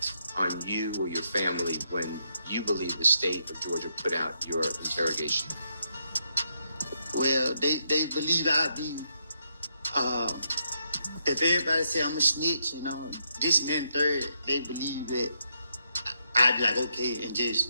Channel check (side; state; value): both; inverted; correlation -0.78